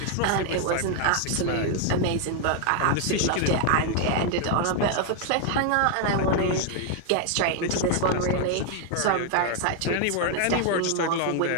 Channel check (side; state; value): both; different; correlation 0.00